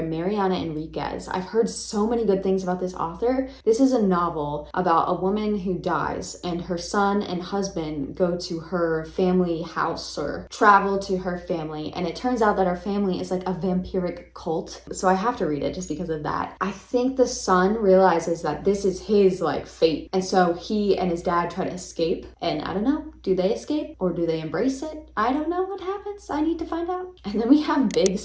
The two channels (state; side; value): identical; both; correlation 1.00